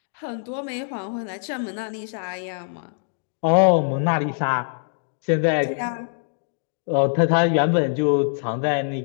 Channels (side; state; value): right; silent; digital silence